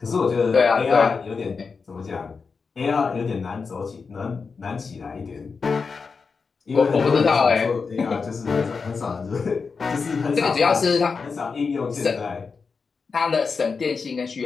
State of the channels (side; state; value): right; quieter; 5.0 dB